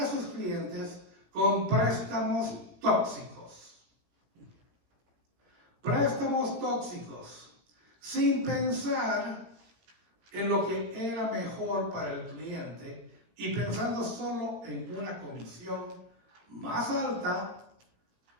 a sus clientes con préstamos tóxicos. Préstamos tóxicos, sin pensar en lo que era mejor para el cliente y pensando solo en una comisión más alta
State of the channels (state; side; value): late; left; 17 ms